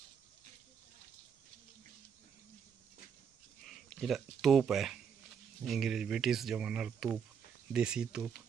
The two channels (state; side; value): quieter; left; 7.2 dB